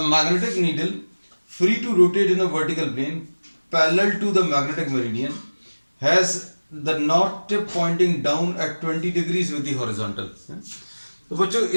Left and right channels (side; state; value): both; inverted; correlation -1.00